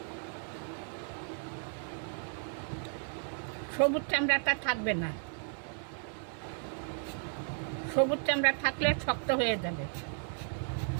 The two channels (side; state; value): left; silent; 55 dB below the other